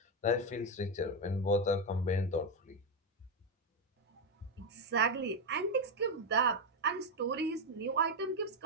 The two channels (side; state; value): both; normal; correlation 0.06